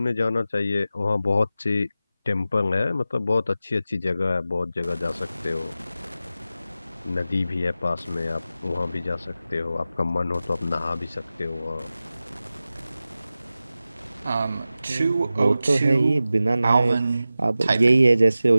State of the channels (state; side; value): inverted; both; correlation -0.94